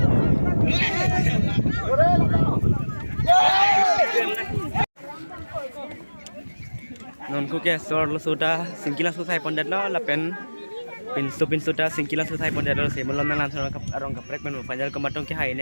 Non ko ke sor lo sudah singkilan susai pondet lo lapen pin sudah singkilan susai pondet lo se molon nan san kap arong kaprek men panjal kematong ke hai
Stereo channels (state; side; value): inverted; both; correlation -1.00